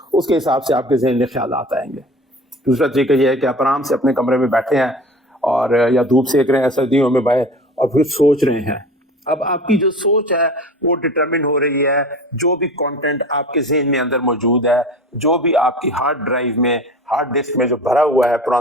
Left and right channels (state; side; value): normal; both; correlation 0.38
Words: اس کے حساب سے آپ کے ذہن میں خیالات آئیں گے. دوسرا طریقہ یہ ہے کہ آپ آرام سے اپنے کمرے میں بیٹھے ہیں اور یا دھوپ سیک رہے ہیں سردیوں میں باہر اور پھر سوچ رہے ہیں. اب آپ کی جو سوچ ہے وہ ڈٹرمن ہو رہی ہے جو بھی کانٹینٹ آپ کے ذہن میں اندر موجود ہے, جو بھی آپ کی ہارڈ ڈرائیو میں, ہارڈ ڈسک میں جو بھرا ہوا ہے